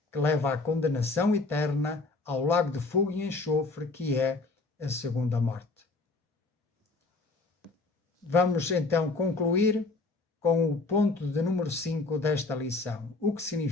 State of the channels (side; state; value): right; quieter; 3.5 dB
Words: que leva à condenação eterna, ao lago de fogo e enxofre, que é a segunda morte. Vamos então concluir com o ponto de número 5 desta lição. O que